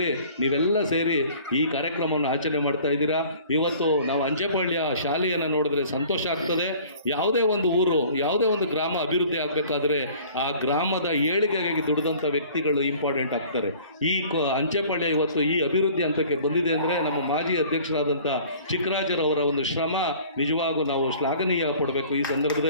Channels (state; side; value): inverted; both; correlation -0.49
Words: ನೀವೆಲ್ಲ ಸೇರಿ ಈ ಕಾರ್ಯಕ್ರಮವನ್ನು ಆಚರಣೆ ಮಾಡ್ತಾ ಇದ್ದೀರಾ. ಇವತ್ತು ನಾವು ಅಂಚೆಪಾಳ್ಯ ಶಾಲೆಯನ್ನು ನೋಡಿದ್ರೆ ಸಂತೋಷ ಆಗ್ತದೆ. ಯಾವುದೇ ಊರು, ಯಾವುದೇ ಗ್ರಾಮ ಅಭಿವೃದ್ಧಿ ಆಗಬೇಕಾದ್ರೆ ಆ ಗ್ರಾಮದ ಏಳಿಗೆಗಾಗಿ ದುಡಿದಂಥ ವ್ಯಕ್ತಿಗಳು ಇಂಪಾರ್ಟೆಂಟ್ ಆಗ್ತಾರೆ. ಈ ಅಂಚೆಪಾಳ್ಯ ಇವತ್ತು ಈ ಅಭಿವೃದ್ಧಿ ಹಂತಕ್ಕೆ ಬಂದಿದೆ ಅಂದರೆ ನಮ್ಮ ಮಾಜಿ ಅಧ್ಯಕ್ಷರಾದಂಥ ಚಿಕ್ಕರಾಜರವರ ಶ್ರಮ ನಿಜವಾಗೂ ನಾವು ಶ್ಲಾಘನೀಯ ಪಡಬೇಕು ಈ